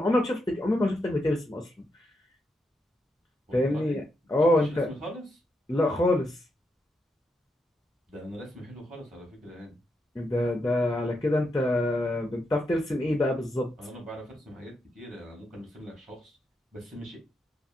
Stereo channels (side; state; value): both; normal; correlation 0.83